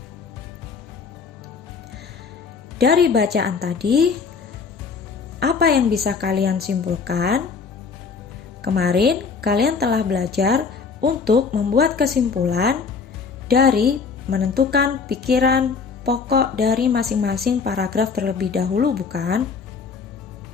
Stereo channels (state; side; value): quieter; right; 5.3 dB